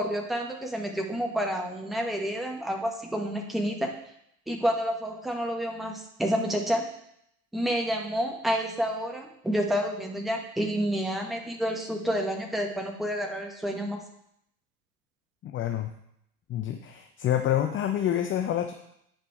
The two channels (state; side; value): normal; both; correlation 0.62